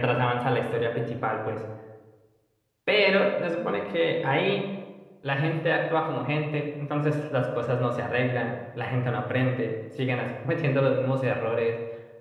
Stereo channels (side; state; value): both; identical; correlation 1.00